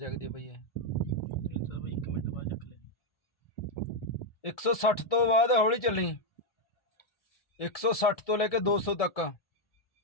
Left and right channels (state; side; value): late; right; 1.7 ms